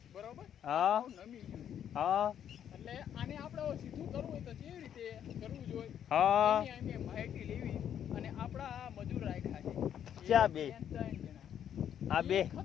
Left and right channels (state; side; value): quieter; right; 9.4 dB